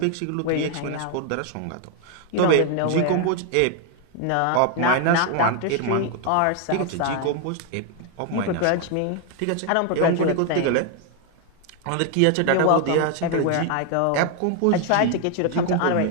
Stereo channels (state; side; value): different; both; correlation 0.00